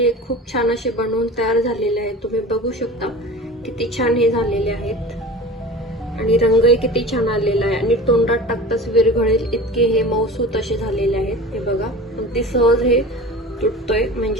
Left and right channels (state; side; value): normal; both; correlation 0.37